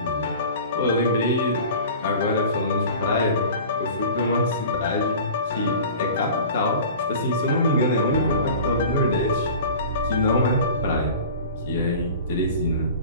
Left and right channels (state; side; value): inverted; both; correlation -0.39